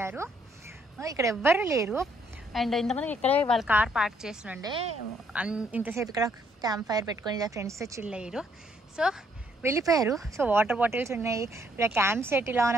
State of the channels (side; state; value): both; normal; correlation 0.69